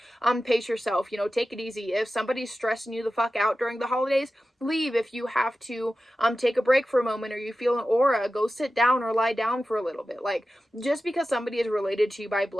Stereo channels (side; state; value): both; normal; correlation 0.93